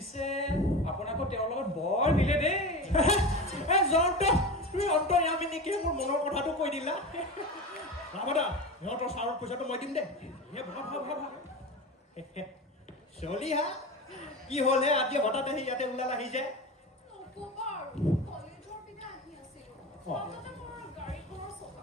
আপোনাকো তেওঁৰ লগত বৰ মিলে দেই। জয়ন্ত, তুমি অন্তৰ্যামী নেকি? মোৰ মনৰ কথাটো কৈ দিলা। ৰাভা, সিহঁতৰ চাউলৰ পইচাটো মই দিম দেই। চলি হা, কি হ'লে আজি হঠাৎ আহি ইয়াতে ওলাল আহি যায়? নক'বা আৰু, কলেজৰ পিনে আহি আছিলোঁ। মাজতে মোৰ গাড়ীখনৰ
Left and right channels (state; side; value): normal; both; correlation 0.27